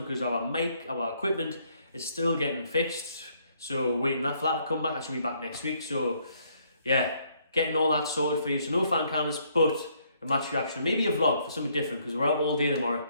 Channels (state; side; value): inverted; both; correlation -0.68